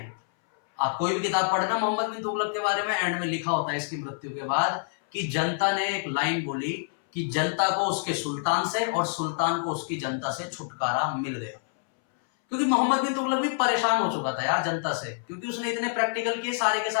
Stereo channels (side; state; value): right; silent; 60 dB below the other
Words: आप कोई भी किताब पढ़ना मोहम्मद बिन तुगलक के बारे में, एंड में लिखा होता है इसकी मृत्यु के बाद कि जनता ने एक लाइन बोली कि जनता को उसके सुल्तान से और सुल्तान को उसकी जनता से छुटकारा मिल गया। क्योंकि मोहम्मद बिन तुगलक भी परेशान हो चुका था यार जनता से, क्योंकि उसने इतने प्रैक्टिकल किए, सारे के